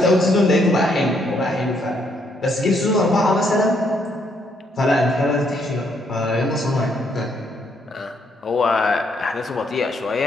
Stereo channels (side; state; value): both; normal; correlation 0.72